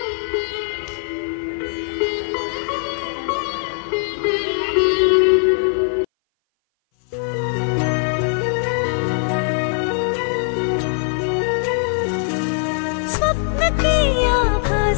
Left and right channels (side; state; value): right; silent; 58 dB below the other